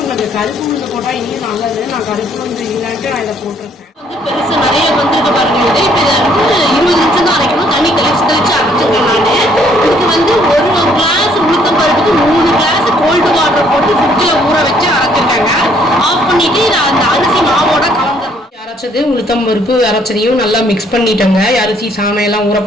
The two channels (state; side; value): normal; both; correlation 0.65